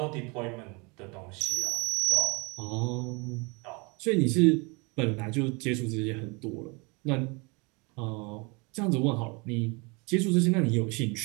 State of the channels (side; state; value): left; quieter; 29.3 dB